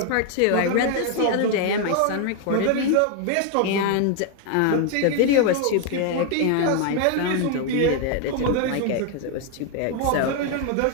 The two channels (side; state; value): both; different; correlation 0.00